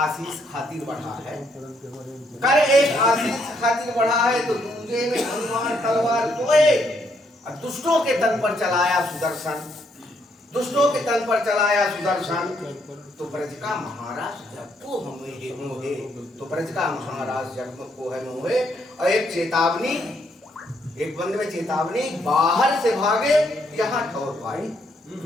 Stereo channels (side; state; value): both; normal; correlation 0.73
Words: खातिर बढ़ा है, कर एक आशीष खातिर बढ़ा है, तो दूजे में हनुमान तलवार सोए, और दुष्टों के तन पर चलाया सुदर्शन, दुष्टों के तन पर चलाया सुदर्शन, तो ब्रज का महाराज जब को हमें मोहे, तो ब्रज का महाराज जब को है मोहे। और एक चेतावनी, एक बंद में चेतावनी, बाहर से भागे यहाँ ठौर पाए,